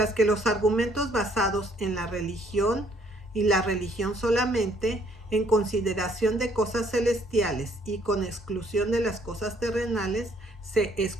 que los argumentos basados en la religión y la religión solamente, en consideración de cosas celestiales y con exclusión de las cosas terrenales, se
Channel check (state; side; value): normal; both; correlation 0.64